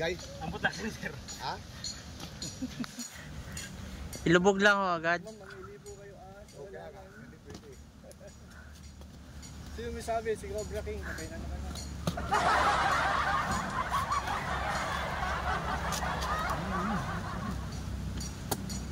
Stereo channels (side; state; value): both; identical; correlation 1.00